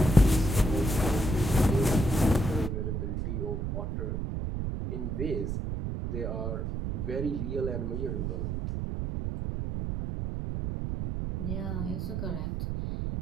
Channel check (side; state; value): right; noise; rumble, 2 dB below the sound